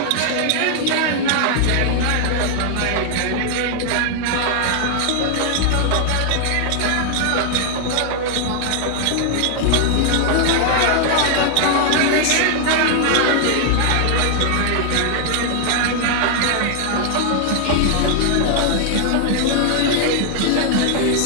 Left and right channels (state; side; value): different; both; correlation 0.00